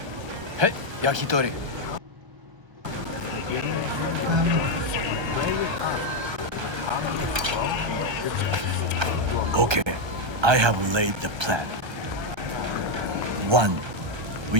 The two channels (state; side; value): late; left; 1.3 ms